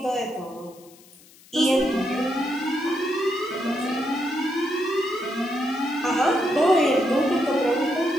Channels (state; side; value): noise; left; hiss, 25 dB below the sound